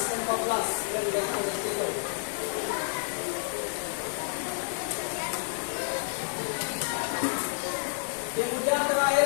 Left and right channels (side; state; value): right; silent; 58 dB below the other